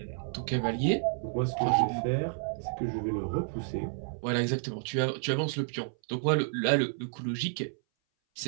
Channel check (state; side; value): silent; left; 57 dB below the other